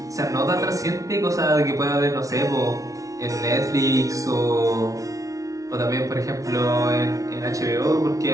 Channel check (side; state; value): left; late; 0.17 ms